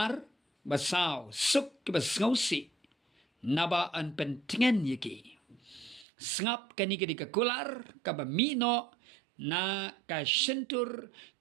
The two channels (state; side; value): drops out; left; at 6.1 s